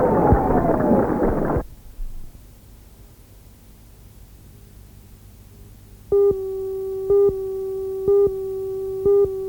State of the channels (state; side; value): identical; both; correlation 1.00